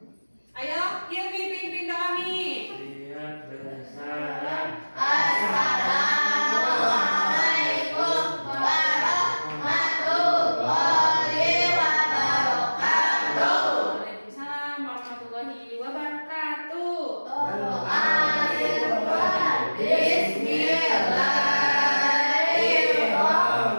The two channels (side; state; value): both; inverted; correlation -1.00